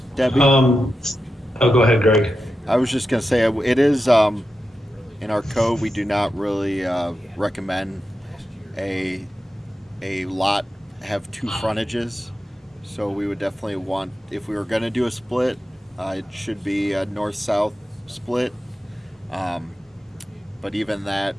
Debbie? Oh, go ahead, Greg. I was just going to say, it is, in our code, we do not really recommend a lot have 2 frontages. So we would definitely want, if we were going to do a split, it should be a north-south split. but even that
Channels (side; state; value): both; normal; correlation 0.90